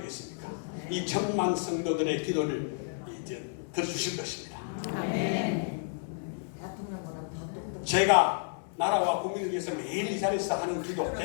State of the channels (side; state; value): right; silent; 57 dB below the other